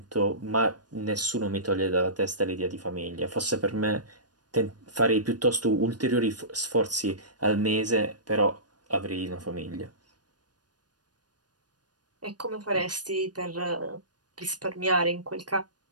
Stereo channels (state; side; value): late; left; 0.69 ms